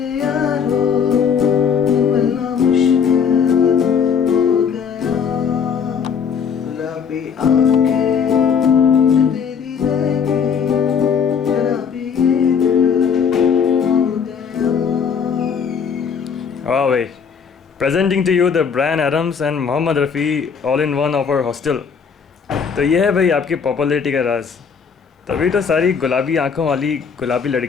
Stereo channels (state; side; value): quieter; right; 6.7 dB